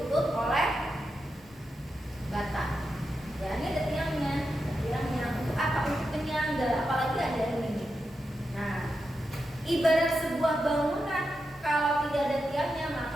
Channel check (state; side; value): normal; both; correlation 0.88